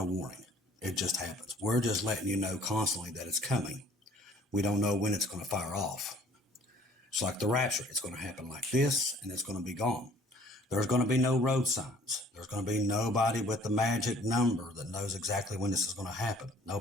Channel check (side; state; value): both; normal; correlation 0.55